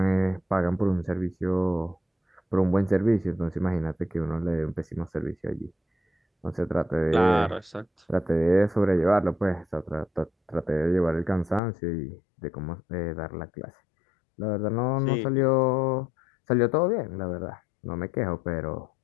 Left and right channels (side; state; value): right; drops out; at 11.6 s